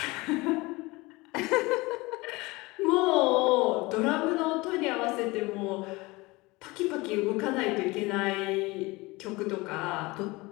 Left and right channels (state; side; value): quieter; right; 22.9 dB